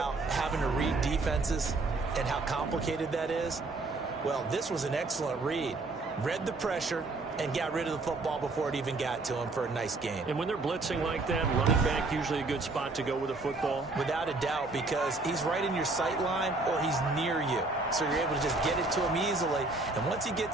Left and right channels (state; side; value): quieter; left; 3.4 dB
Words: having to read defenses and how complicated that is. Well, this was an excellent read. Read the pressure and got rid of the football before it even got to him for a nice gain. And when they're blitzing like that, running back usually a good spot to go with the football? Without a doubt, because he's right in your sight line or he's near you. So you're able to just get it to him easily. And once he